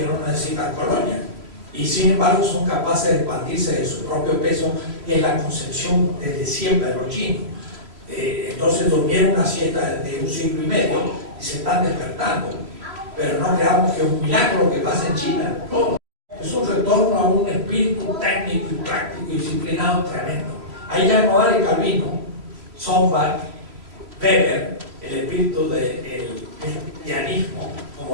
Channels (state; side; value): late; left; 3.1 ms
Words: no necesitan colonias, y sin embargo son capaces de expandirse de su propio peso, que es la concepción desde siempre de los chinos. Entonces durmieron una siesta de 1 siglo y medio y se están despertando. Pero no creamos que es un milagro lo que pasa en China. No, es un retorno a un espíritu técnico y práctico y disciplinado tremendo. Ahí ya no vale Calvino, Sombart, Weber, el espíritu del cristianismo como